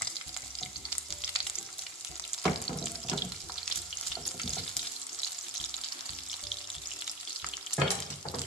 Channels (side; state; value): both; normal; correlation 0.31